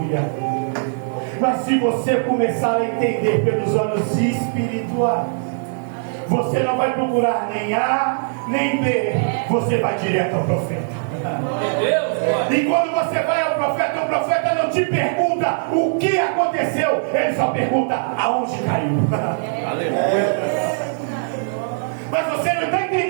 Mas se você começar a entender pelos olhos espirituais, você não vai procurar nem A nem B, você vai direto ao profeta. E quando você vai ao profeta, o profeta não te pergunta o que aconteceu, ele só pergunta aonde caiu. Aleluia. Mas você não está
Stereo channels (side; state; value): left; silent; 65 dB below the other